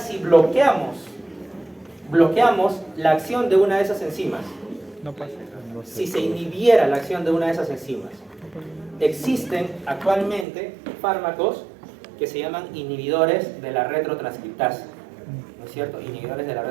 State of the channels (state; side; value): drops out; left; at 10.5 s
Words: bloqueamos la acción de una de esas enzimas? No pasa. No sé. Si se inhibiera la acción de una de esas enzimas. Existen actualmente fármacos que se llaman inhibidores de la retrotranscriptasa, ¿no es cierto? Inhibidores de la